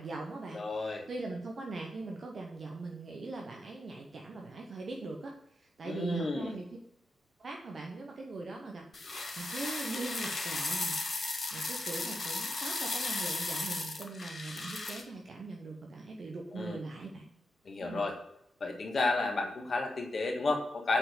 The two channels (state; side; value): normal; both; correlation 0.86